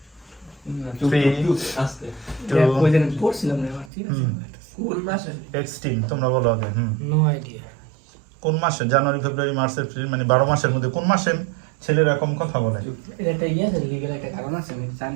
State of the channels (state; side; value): drops out; left; at 3.9 s